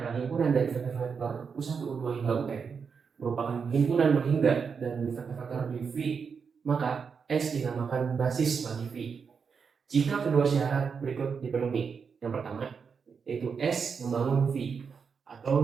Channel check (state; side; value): quieter; left; 6.0 dB